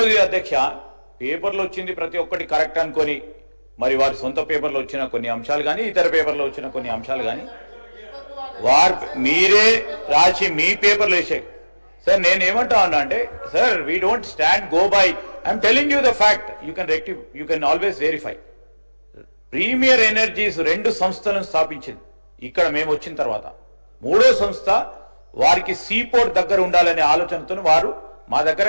అధ్యక్ష పేపర్లో వచ్చింది ప్రతి ఒక్కటి కరెక్ట్ అనుకొని మరి వారి సొంత పేపర్లో వచ్చిన కొన్ని అంశాలు కానీ ఇతర పేపర్లో వచ్చిన కొన్ని అంశాలు కానీ వారు మీరే రాసి మీ పేపర్లో వేసారు. సార్ నేను ఏమంటా ఉన్నా అంటే, sir we don't stand go by, I'm telling you the fact, you can always verify. Premier energies 2 సంస్థలను స్థాపించింది ఇక్కడ మేము వచ్చిన తర్వాత. 3వ సంస్థ వారికి సీపోర్ట్ దగ్గర ఉండాలనే ఆలోచనతో వారు మా దగ్గర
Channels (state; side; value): inverted; both; correlation -1.00